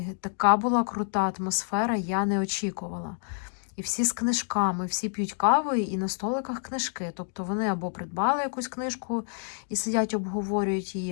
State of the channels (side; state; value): right; silent; digital silence